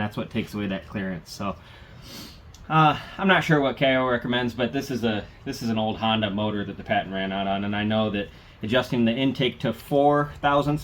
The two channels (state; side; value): identical; both; correlation 1.00